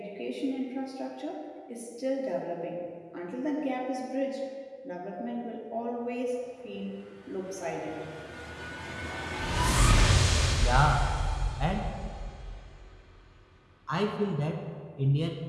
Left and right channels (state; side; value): identical; both; correlation 1.00